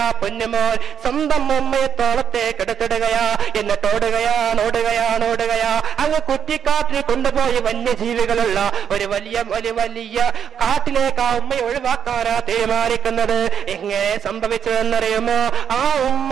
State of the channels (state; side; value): quieter; left; 8.2 dB